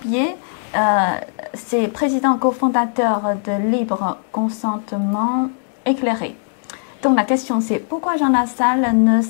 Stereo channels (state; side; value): silent; right; 66 dB below the other